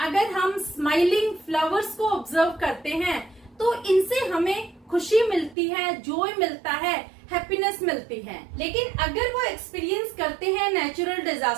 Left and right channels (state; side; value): drops out; left; at 5.6 s